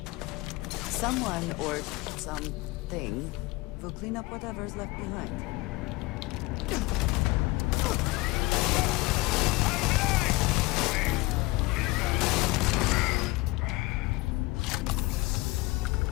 Someone or something will clean up whatever's left behind.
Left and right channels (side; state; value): right; quieter; 22.3 dB